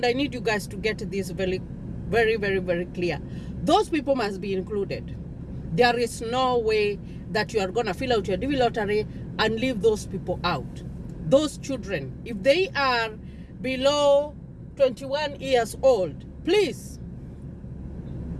I need you guys to get this very, very, very, very clear, those people must be included. There is no way that you are going to fill out your DV lottery and leave those people out. Those children, if they are below 21 years old, please.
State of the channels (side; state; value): both; identical; correlation 1.00